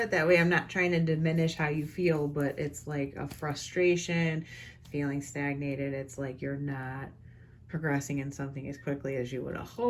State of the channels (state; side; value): identical; both; correlation 1.00